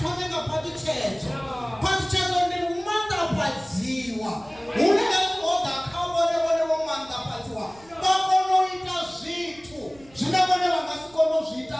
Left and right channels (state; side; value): noise; right; rumble, 26 dB below the sound